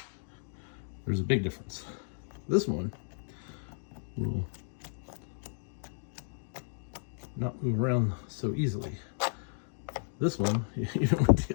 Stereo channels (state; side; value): silent; right; digital silence